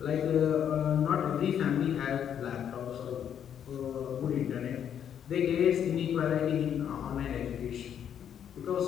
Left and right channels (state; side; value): quieter; right; 9.0 dB